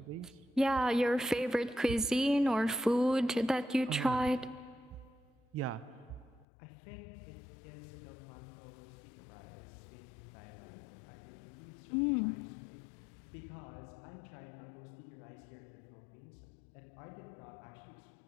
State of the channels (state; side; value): drops out; right; at 6.5 s